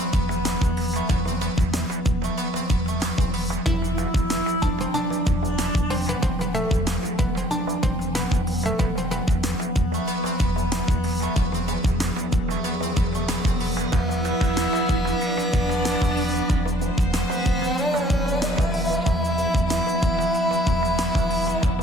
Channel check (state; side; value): normal; both; correlation 0.60